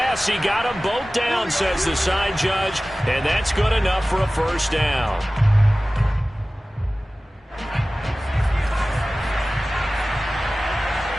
he got them both down, says the side judge. And that's good enough for a first down.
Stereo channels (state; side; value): normal; both; correlation 0.97